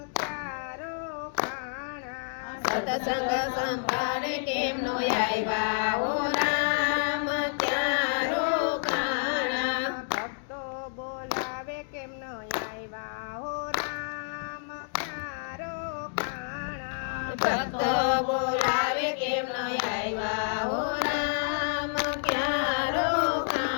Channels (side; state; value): right; silent; digital silence